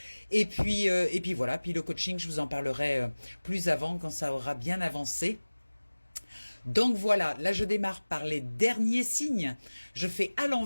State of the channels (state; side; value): inverted; both; correlation -1.00